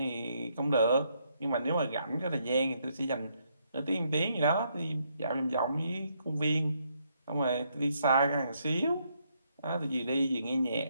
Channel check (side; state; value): both; inverted; correlation -0.74